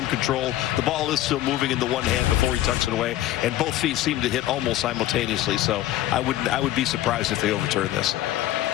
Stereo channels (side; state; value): right; quieter; 14.1 dB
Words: control. The ball is still moving in the one hand before he tucks it away, and both feet seem to hit almost simultaneously. So I would be surprised if they overturn this.